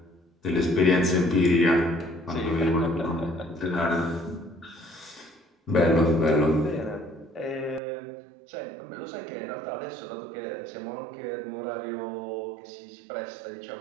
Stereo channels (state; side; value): drops out; left; at 7.8 s